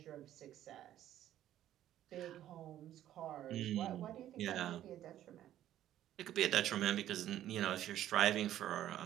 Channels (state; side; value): quieter; left; 12.3 dB